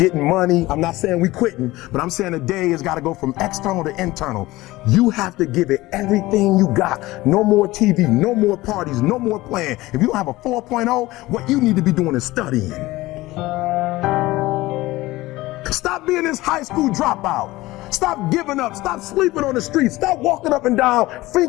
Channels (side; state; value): right; quieter; 18.8 dB